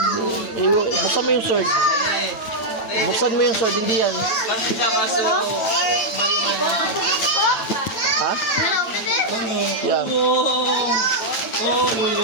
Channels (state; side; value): late; right; 9.1 ms